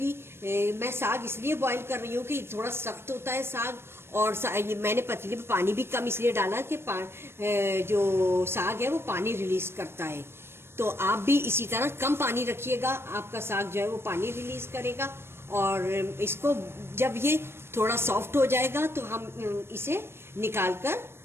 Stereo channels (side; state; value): left; late; 0.12 ms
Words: मैं साग इसलिए बॉयल कर रही हूँ कि थोड़ा सख्त होता है साग, और मैंने पतीले में पानी भी कम इसलिए डाला कि जो साग है वो पानी रिलीज करता है। तो आप भी इसी तरह कम पानी रखिएगा, आपका साग जो है वो पानी रिलीज करेगा। और इसको जब ये थोड़ा सॉफ्ट हो जाएगा तो हम इसे निकाल कर